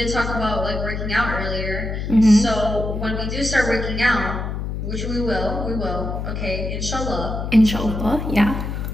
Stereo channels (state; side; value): noise; left; hum, 4 dB below the sound